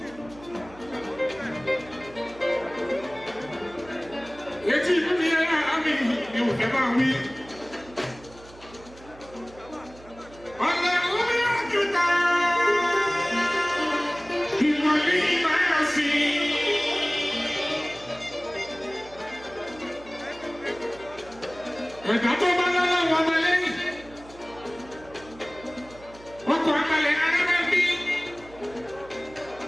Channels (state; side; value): noise; right; hum, 21 dB below the sound